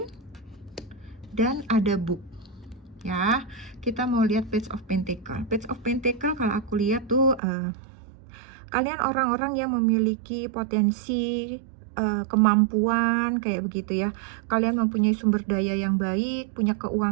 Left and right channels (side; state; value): left; drops out; at 7.4 s